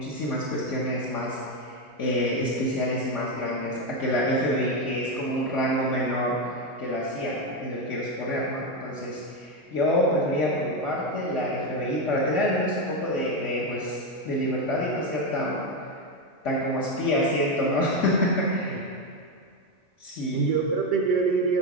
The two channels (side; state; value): both; normal; correlation 0.09